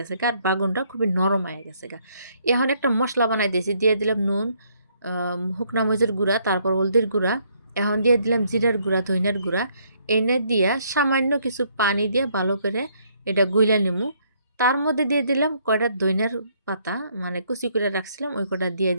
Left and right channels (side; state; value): both; inverted; correlation -0.69